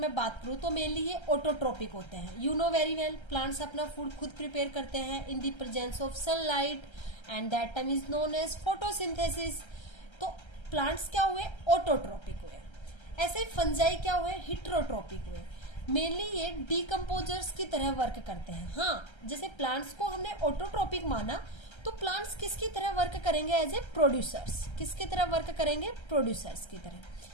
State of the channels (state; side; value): late; right; 1.3 ms